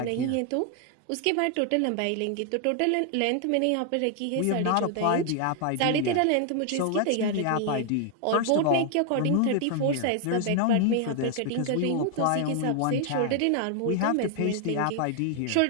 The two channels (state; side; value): different; both; correlation 0.00